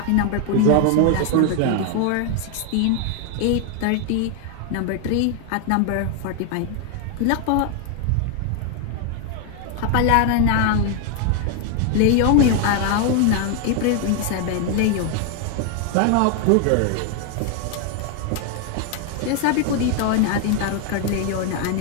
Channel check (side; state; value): both; different; correlation 0.00